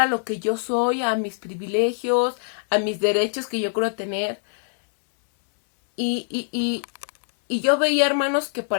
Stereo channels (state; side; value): silent; right; digital silence